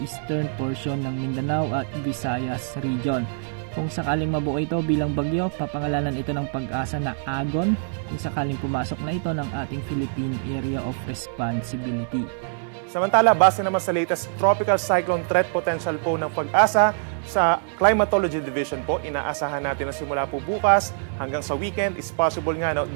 portion ng Mindanao at Visayas region. Kung sakaling mabuo ito bilang bagyo, papangalanan ito ng Pag-asa na Agon kung sakaling pumasok na ito ng ating Philippine Area of Responsibility. Samantala, base naman sa latest Tropical Cyclone Threat Potential po ng Pag-asa, sa Climatology Division po, inaasahan natin na simula po bukas hanggang sa weekend is possible nga na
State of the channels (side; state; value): left; silent; digital silence